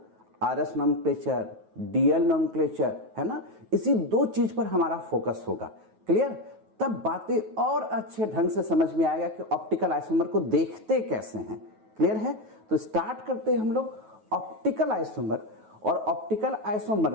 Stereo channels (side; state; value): left; late; 9.3 ms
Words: आरएस नोमेनक्लेचर, डीएल नोमेनक्लेचर, है ना। इसी दो चीज पर हमारा फोकस होगा। क्लियर? तब बातें और अच्छे ढंग से समझ में आएगा कि ऑप्टिकल आइसोमर को देखते कैसे हैं। क्लियर है? तो स्टार्ट करते हैं हम लोग ऑप्टिकल आइसोमर। और ऑप्टिकल आइसोमर